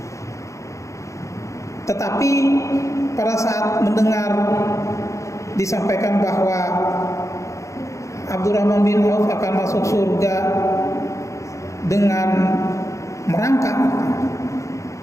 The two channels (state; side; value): late; right; 0.15 ms